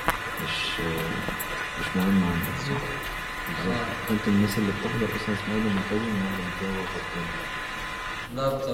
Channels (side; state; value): both; identical; correlation 1.00